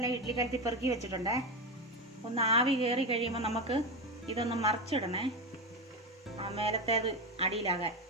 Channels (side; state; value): both; normal; correlation 0.16